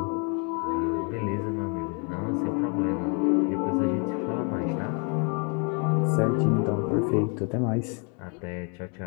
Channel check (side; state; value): right; quieter; 36.7 dB